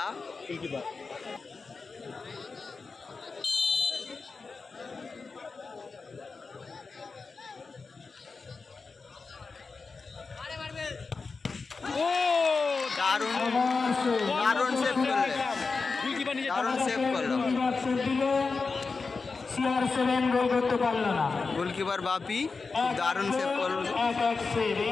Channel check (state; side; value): quieter; right; 4.4 dB